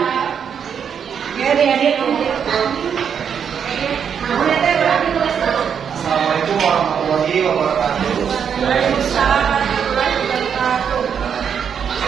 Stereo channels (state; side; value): quieter; left; 7.6 dB